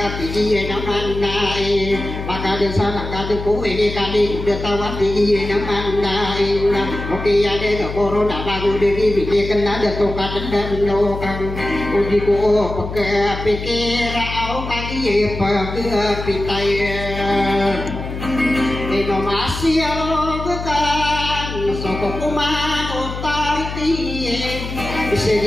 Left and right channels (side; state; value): left; noise; hum, 7 dB below the sound